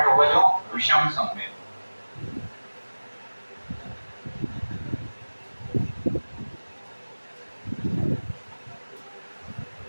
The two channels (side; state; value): both; inverted; correlation -1.00